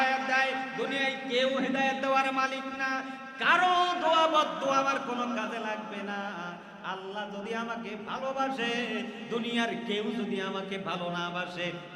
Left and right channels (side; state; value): both; identical; correlation 1.00